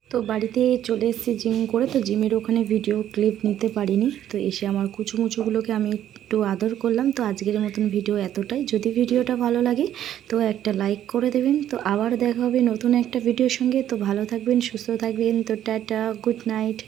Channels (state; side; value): quieter; left; 11.2 dB